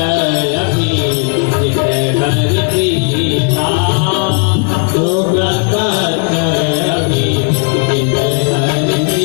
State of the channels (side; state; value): right; quieter; 39.4 dB